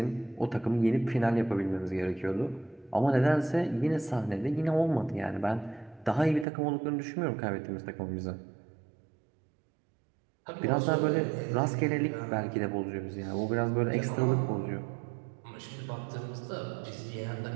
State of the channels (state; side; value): drops out; left; at 6.5 s